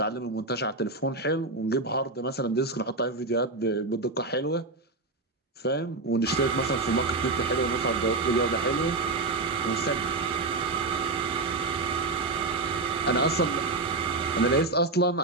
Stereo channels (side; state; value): left; quieter; 3.3 dB